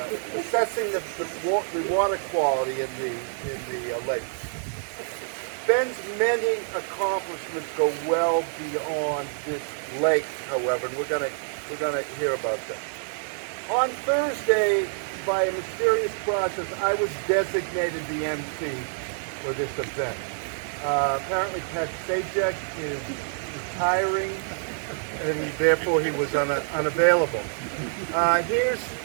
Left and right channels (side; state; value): left; silent; digital silence